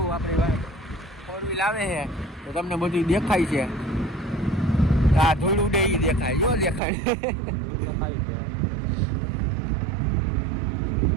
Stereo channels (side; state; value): left; drops out; at 6.8 s